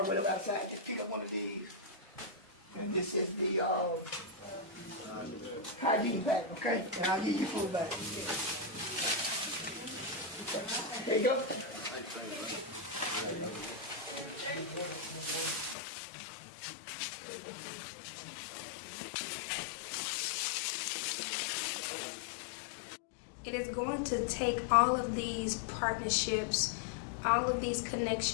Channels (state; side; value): drops out; right; at 15.8 s